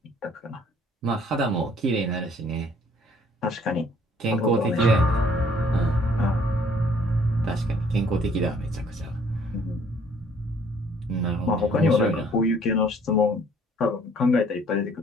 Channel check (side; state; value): both; normal; correlation 0.60